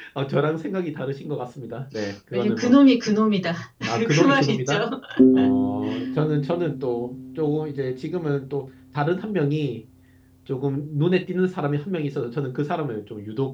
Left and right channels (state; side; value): identical; both; correlation 1.00